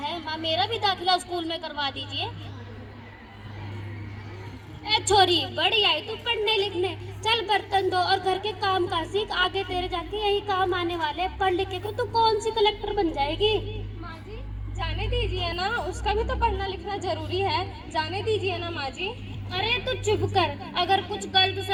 माँ, मेरा भी दाखिला स्कूल में करवा दीजिए। ए छोरी, बड़ी आई तू पढ़ने लिखने। चल बर्तन धो और घर के काम काज सीख, आगे तेरे जाके यही काम आने वाले। पढ़ लिख के तू कौन सी कलेक्टर बन जाएगी। माँ जी, जाने दीजिए ना, उसका भी तो पढ़ना लिखना जरूरी है। जाने दीजिए ना माँ जी। अरे तू चुप कर, अगर कुछ गलत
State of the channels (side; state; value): both; identical; correlation 1.00